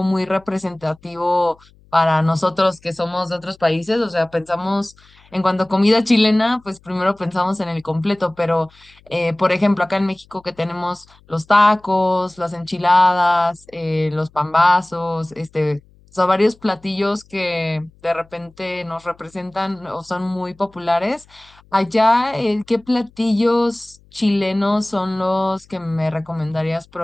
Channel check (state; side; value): noise; left; hum, 29 dB below the sound